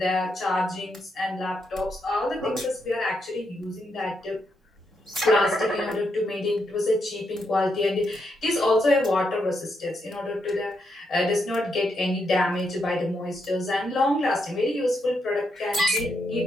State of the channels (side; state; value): both; normal; correlation 0.80